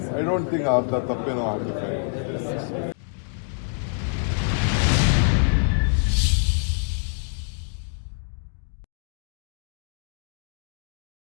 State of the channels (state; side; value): silent; right; 61 dB below the other